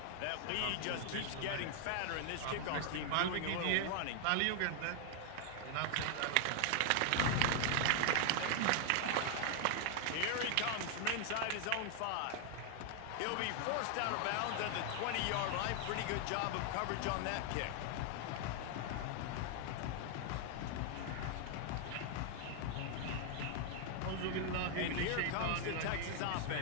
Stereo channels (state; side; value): different; both; correlation 0.00